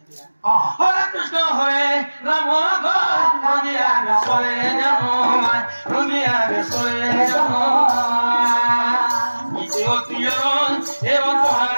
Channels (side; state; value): both; inverted; correlation -1.00